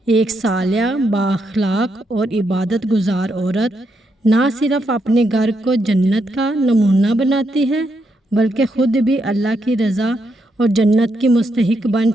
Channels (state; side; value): normal; both; correlation 0.80